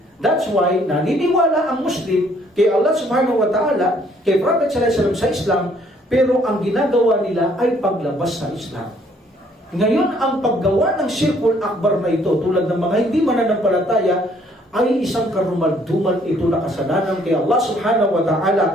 That's why naniniwala ang Muslim kay Allah subhanahu wa ta'ala, kay Prophet sallallahu alaihi wasallam sa Islam, pero ang ginagawa nila ay paglabas sa Islam. Ngayon, ang paggawa ng Shirkul Akbar na ito, tulad ng mga hindi mananampalataya, ay isang karumal-dumal ito na kasalanan kay Allah subhanahu wa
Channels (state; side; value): normal; both; correlation 0.63